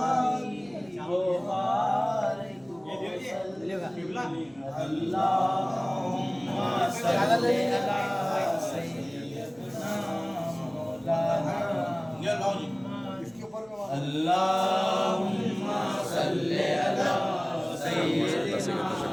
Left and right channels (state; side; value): noise; right; hum, 28 dB below the sound